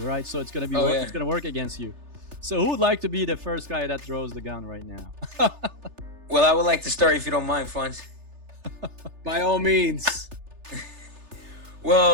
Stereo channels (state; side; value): late; left; 3.3 ms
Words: right? So it's going to be it's going to work against you. So who would like to be the first guy that draws the gun right now? Well, I would like to start if you don't mind, Frantz. By all means.